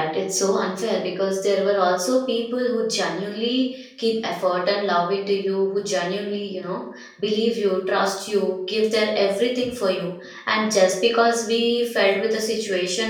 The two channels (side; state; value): both; identical; correlation 1.00